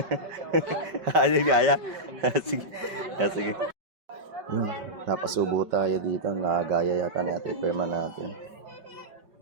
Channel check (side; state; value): left; late; 5.2 ms